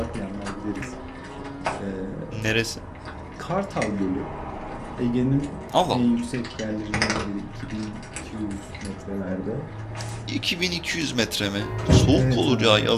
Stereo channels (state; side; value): identical; both; correlation 1.00